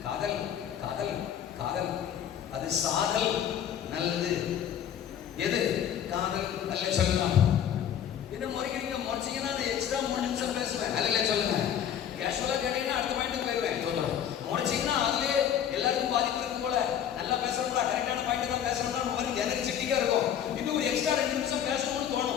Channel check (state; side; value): quieter; right; 9.4 dB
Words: காதல் காதல் காதல். அது சாதல் நல்லது. எது காதல்? அல்ல சொல்லலாம். என்ன முறைக்கிறீங்க? முறைச்சிங்கன்னா எக்ஸ்ட்ரா 3 நிமிஷம் பேசுவேன். அல்ல சொல்லுங்க. கேஷுவலா கேட்டீங்கன்னா அடுத்த பாயிண்ட் போயிருவேன். முறைச்சிங்கன்னா அதுலயே எல்லாருக்கும் பாதிப்பு இருக்கும் போல. நல்லா பேசுறோம்டா, கரெக்டான பாயிண்ட் தான் பேசுறோம்டா, உங்களுக்கு எனர்ஜெட்டிக்கா இருக்கும். இன்னும் ஒரு எக்ஸ்ட்ரா 2 நிமிஷம் பேசணும்னு